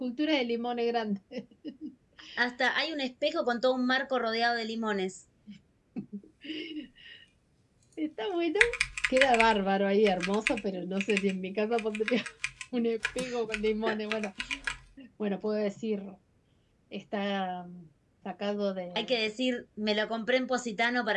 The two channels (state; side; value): identical; both; correlation 1.00